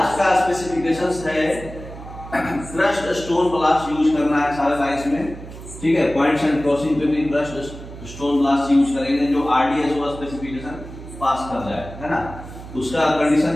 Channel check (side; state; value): right; noise; hum, 14 dB below the sound